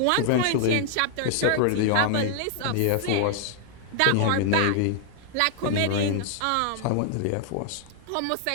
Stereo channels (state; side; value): different; both; correlation -0.01